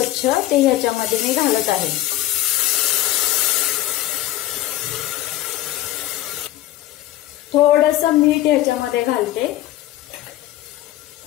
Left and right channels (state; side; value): quieter; right; 14.4 dB